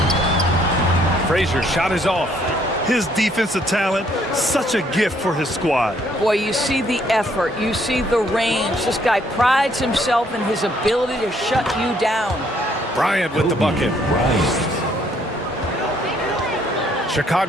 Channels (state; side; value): normal; both; correlation 0.67